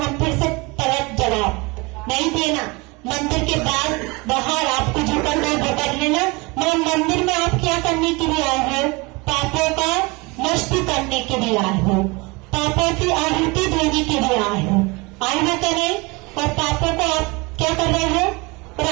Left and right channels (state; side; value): quieter; left; 25.9 dB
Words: फिर से पलट जवाब नहीं देना। मंदिर के बाद बाहर आपको जो करना है वो कर लेना, मगर मंदिर में आप क्या करने के लिए आए हो? पापों का नष्ट करने के लिए आए हो, पापों की आहुति देने के लिए आए हो। आए हो तो नहीं? और पापों को आप क्या कर रहे हो? और